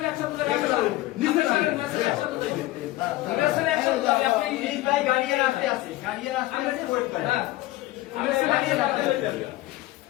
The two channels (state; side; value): quieter; right; 17.5 dB